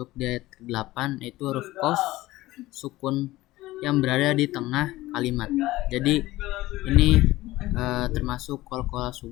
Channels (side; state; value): right; quieter; 17.6 dB